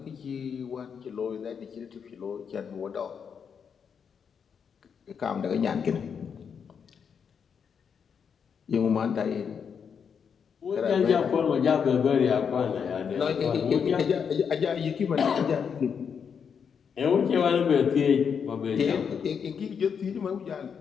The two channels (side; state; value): right; quieter; 6.9 dB